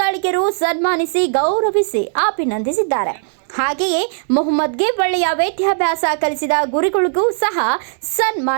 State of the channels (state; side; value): silent; left; 68 dB below the other